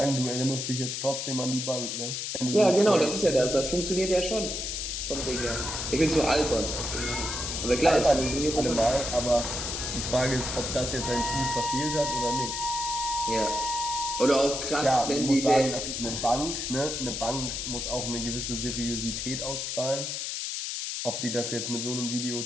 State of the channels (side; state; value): left; noise; hiss, 3 dB below the sound